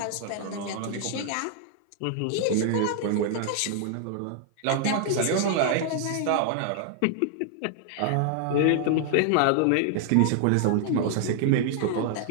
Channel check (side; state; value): both; different; correlation 0.00